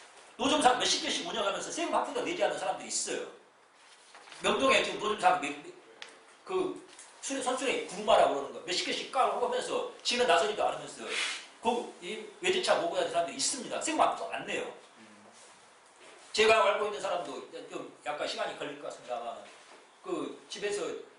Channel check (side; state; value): both; identical; correlation 1.00